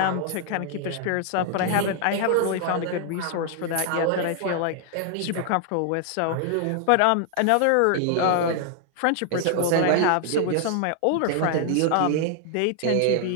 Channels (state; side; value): different; both; correlation 0.00